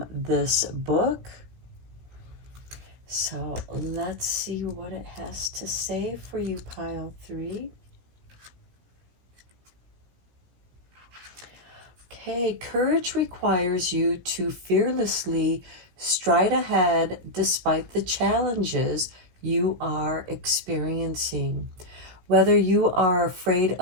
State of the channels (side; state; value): left; late; 17 ms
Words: this book. So let's see what it has to say for you, pile 3. Okay, courage requires you to fearlessly stride ahead despite the challenges you are experiencing. Whether you are afraid